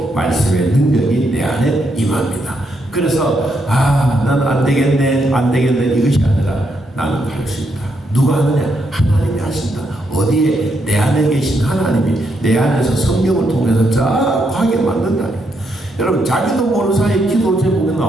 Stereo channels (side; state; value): both; normal; correlation 0.78